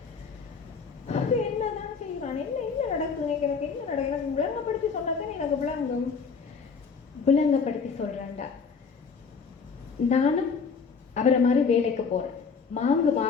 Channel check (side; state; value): right; quieter; 5.5 dB